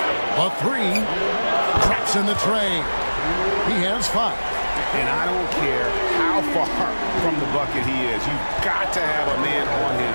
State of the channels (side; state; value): both; inverted; correlation -1.00